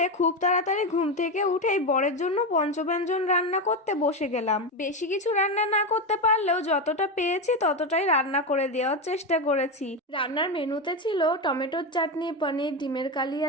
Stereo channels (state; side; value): normal; both; correlation 0.14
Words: খুব তাড়াতাড়ি ঘুম থেকে উঠেই বরের জন্য পঞ্চব্যঞ্জন রান্না করতে বসে গেলাম। বেশি কিছু রান্না না করতে পারলেও যতটা পেয়েছি ততটাই রান্না করে দেওয়ার চেষ্টা করেছি। রান্নার মেনুতে ছিল টমেটোর চাটনি, পনির, ডিমের কালিয়া,